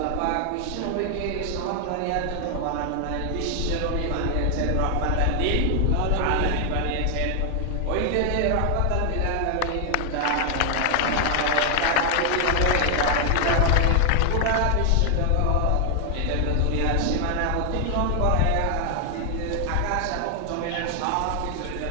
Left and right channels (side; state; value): both; different; correlation 0.00